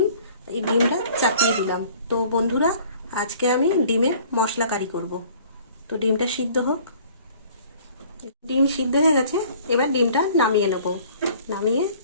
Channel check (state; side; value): inverted; both; correlation -0.52